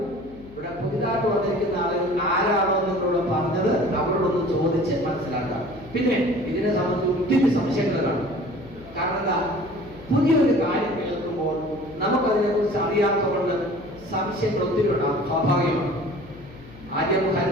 ഇവിടെ പുതിയതായിട്ട് വന്നിരിക്കുന്ന ആളുകൾ ആരാണോ നിങ്ങളോട് പറഞ്ഞത് അവരോടൊന്ന് ചോദിച്ച് മനസ്സിലാക്കാം. പിന്നെ ഇതിനെ സംബന്ധിച്ച് ഒത്തിരി സംശയങ്ങൾ കാണും. കാരണം എന്താ? പുതിയൊരു കാര്യം കേൾക്കുമ്പോൾ നമുക്കതിനെ കുറിച്ച് അറിയാത്തതുകൊണ്ട് സംശയങ്ങൾ ഒത്തിരി ഉണ്ടാകും, സ്വാഭാവികമാണ്. ആദ്യം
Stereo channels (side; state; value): left; noise; hum, 20 dB below the sound